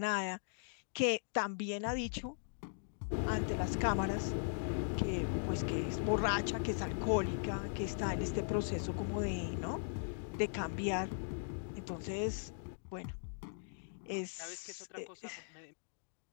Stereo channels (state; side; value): silent; right; digital silence